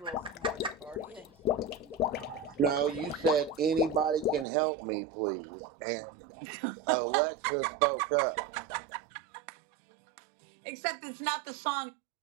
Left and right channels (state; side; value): drops out; left; at 4.5 s